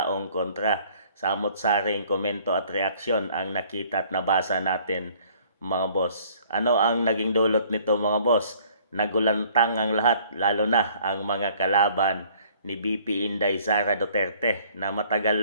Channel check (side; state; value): both; inverted; correlation -0.58